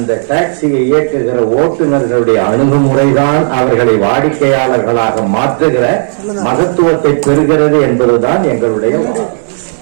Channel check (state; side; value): silent; left; digital silence